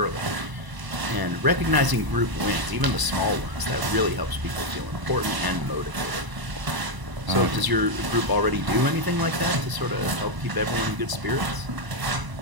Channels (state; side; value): late; left; 1.0 ms